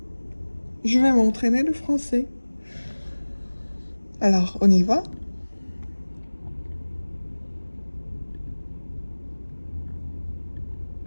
je vais m'entraîner le français. Alors, on y va?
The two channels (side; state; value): both; inverted; correlation -1.00